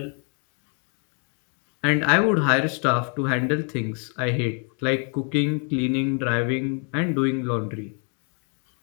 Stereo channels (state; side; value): quieter; right; 37.6 dB